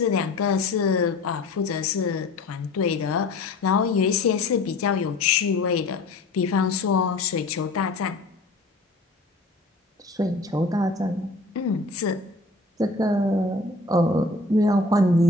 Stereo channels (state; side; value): quieter; right; 3.2 dB